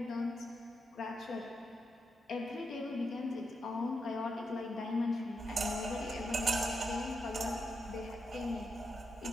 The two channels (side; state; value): both; normal; correlation 0.84